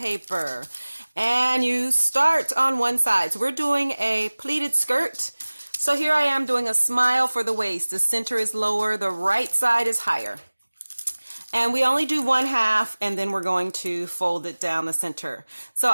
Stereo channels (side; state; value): both; inverted; correlation -1.00